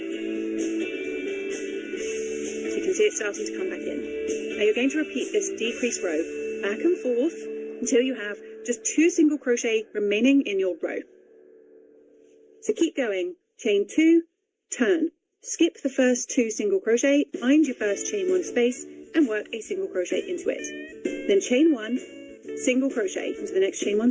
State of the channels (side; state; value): both; identical; correlation 1.00